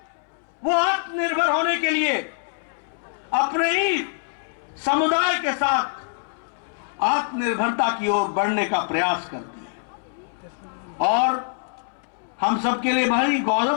वो आत्मनिर्भर होने के लिए अपने ही समुदाय के साथ आत्मनिर्भरता की ओर बढ़ने का प्रयास करती है। और हम सबके लिए भारी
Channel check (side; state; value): right; silent; 62 dB below the other